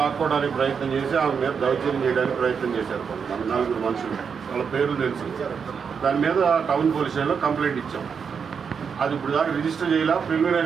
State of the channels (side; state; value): left; quieter; 6.4 dB